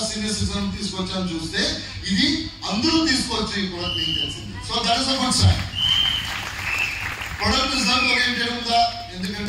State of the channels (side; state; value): both; identical; correlation 1.00